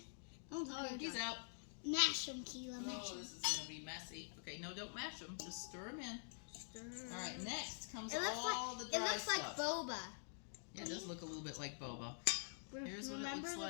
He's out. Mash them, Keela. Mash Oh, them. this is gonna be messy. Okay, no, don't mash them. Just stir them in. Stir. All right, next comes It looks all the dry It looks stuff. like boba. Yeah, it does look a little bit like boba. Here's what it Remember looks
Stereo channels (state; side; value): silent; right; digital silence